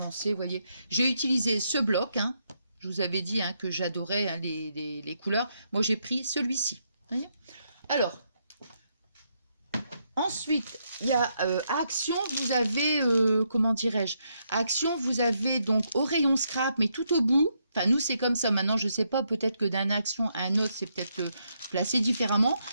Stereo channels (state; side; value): inverted; both; correlation -0.78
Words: vous voyez, j'ai utilisé ce bloc, hein, je vous avais dit hein, que j'adorais hein, les couleurs. Moi, j'ai pris celui-ci. Alors, ensuite, il y a Action, vous avez, comment dirais-je, Action, vous avez donc au rayon scrap, mais tout au bout. Enfin, nous, c'est comme ça. Maintenant, je ne sais pas, peut-être que d'un Action à un autre, c'est peut-être placé différemment.